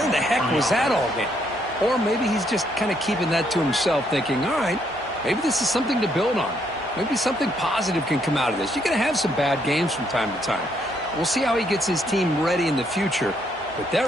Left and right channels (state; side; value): normal; both; correlation 0.72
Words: the heck was that all game? Or maybe he's just kind of keeping that to himself, thinking, all right, maybe this is something to build on. Maybe something positive can come out of this. You're going to have some bad games from time to time. We'll see how he gets his team ready in the future. But